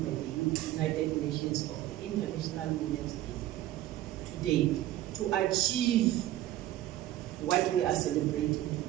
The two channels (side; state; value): left; quieter; 14.2 dB